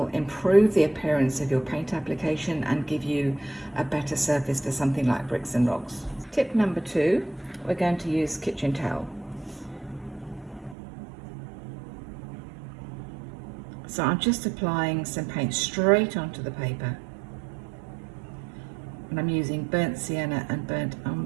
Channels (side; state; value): left; drops out; at 10.8 s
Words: improve the appearance of your paint application and give you a better surface for something like bricks and rocks. Tip number 2, we're going to use kitchen towel. So I'm just applying some paint straight onto the paper, and I'm using burnt sienna and burnt